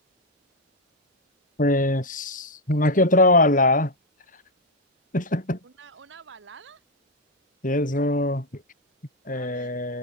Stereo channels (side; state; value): both; normal; correlation 0.03